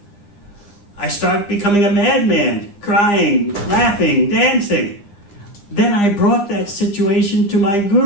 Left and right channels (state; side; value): late; right; 9.8 ms